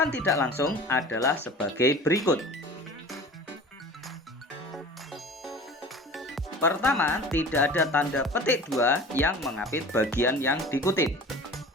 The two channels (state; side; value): normal; both; correlation 0.39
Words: tidak langsung adalah sebagai berikut. Pertama, tidak ada tanda petik dua yang mengapit bagian yang dikutip.